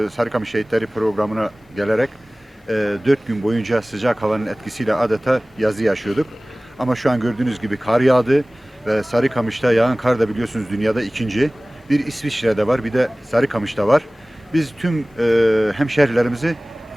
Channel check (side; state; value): both; normal; correlation 0.98